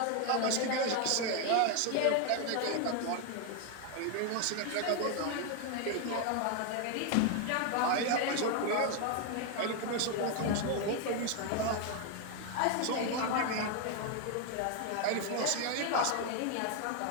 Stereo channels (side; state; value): both; different; correlation 0.01